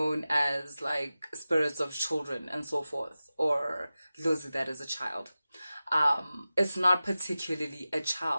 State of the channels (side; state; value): both; inverted; correlation -0.95